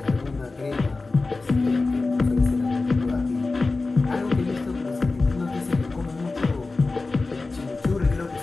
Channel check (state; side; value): quieter; right; 3.6 dB